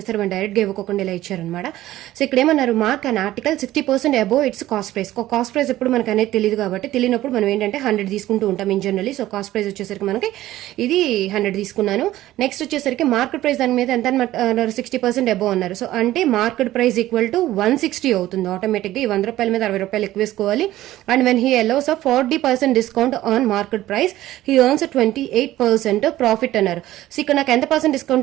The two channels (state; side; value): quieter; left; 15.0 dB